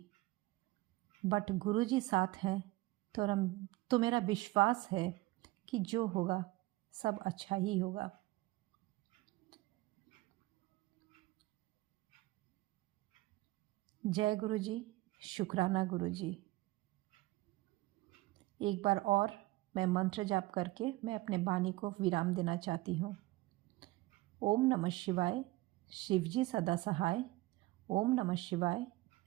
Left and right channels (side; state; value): left; quieter; 19.4 dB